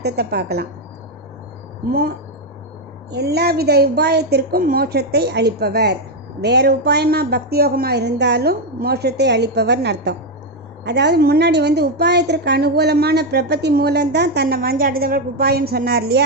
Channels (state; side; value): normal; both; correlation 0.04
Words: பார்க்கலாம். எல்லா வித உபாயத்திற்கும் மோட்சத்தை அளிப்பவர். வேறு உபாயமாக பக்தி யோகமாக இருந்தாலும் மோட்சத்தை அளிப்பவர்னு அர்த்தம். அதாவது முன்னாடி உபாயத்திற்கு அனுகூலமான பிரபத்தி மூலம்தான் தன்னை வஞ்சாடுதவர்களுக்கு உபாயம் சொன்னார்